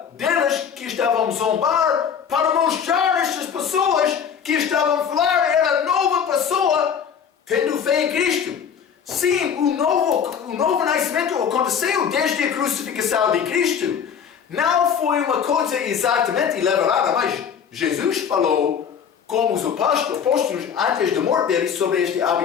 deles que estavam a zombar para mostrar a estas pessoas que estavam a falar era nova pessoa tendo fé em Cristo. Sim, o novo nascimento aconteceu desde a crucificação de Cristo. Não foi uma coisa exatamente elaborada, mas Jesus falou com os apóstolos antes da morte deles sobre esta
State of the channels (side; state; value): right; quieter; 7.5 dB